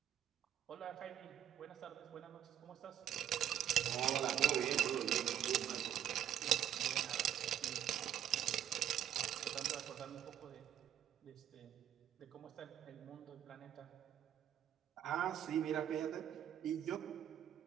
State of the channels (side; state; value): left; quieter; 10.5 dB